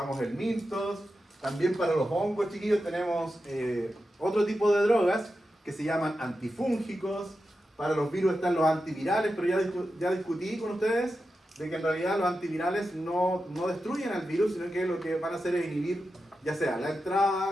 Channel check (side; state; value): both; normal; correlation 0.90